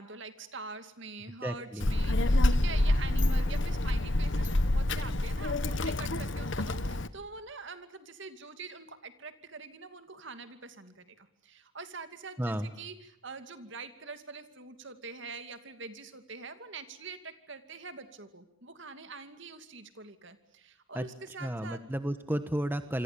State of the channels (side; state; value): both; normal; correlation 0.82